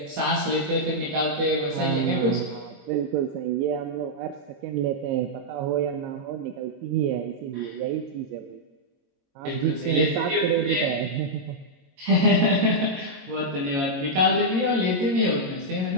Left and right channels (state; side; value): late; left; 22 ms